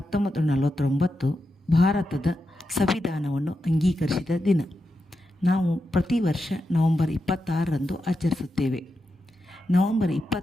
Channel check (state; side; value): normal; both; correlation 0.87